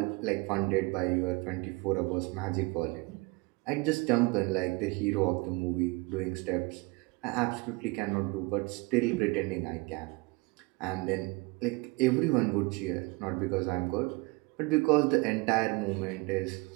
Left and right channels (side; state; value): left; quieter; 26.5 dB